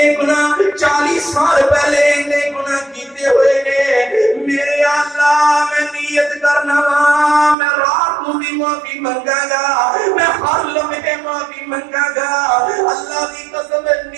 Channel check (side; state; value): left; drops out; at 7.6 s